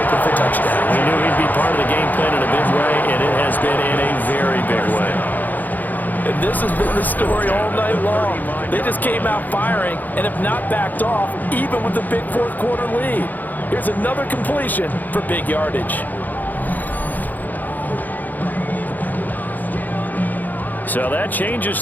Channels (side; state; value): right; late; 0.084 ms